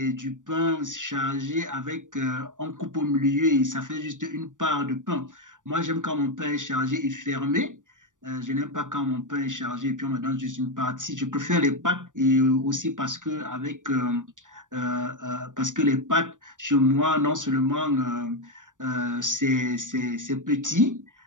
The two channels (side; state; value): left; late; 0.87 ms